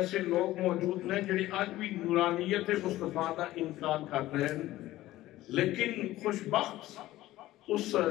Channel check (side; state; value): right; quieter; 16.0 dB